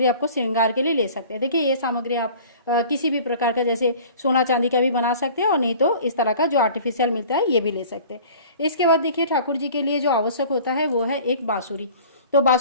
आपको श्रृंगार के लिए ले सकते हैं। देखिए, ये सामग्री आप किसी भी प्रकार का, जैसे सोना चांदी का भी बना सकते हैं, और नहीं तो इस तरह का जो आर्टिफिशियल मिलता है ये भी ले सकते हैं। इसके बाद देखिए, ठाकुर जी के लिए जो आवश्यक होता है वो है एक बांसुरी। तो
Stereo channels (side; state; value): both; inverted; correlation -0.45